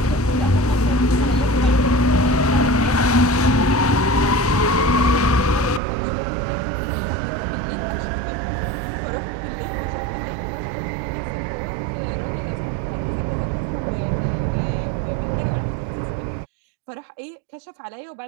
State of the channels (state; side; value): drops out; left; at 5.8 s